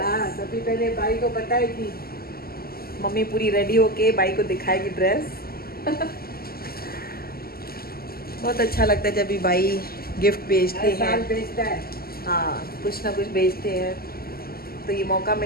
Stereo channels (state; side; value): late; right; 0.44 ms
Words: हाँ, सबसे पहले भाई को बताएगी। मम्मी पूरी रेडी होके भाई को दिखाएगी ड्रेस। बहुत अच्छा लगता है जब भी भाई गिफ्ट भेजते हर साल हैं। भेजता है। हाँ, कुछ ना कुछ भेजते हैं। तो ये मौका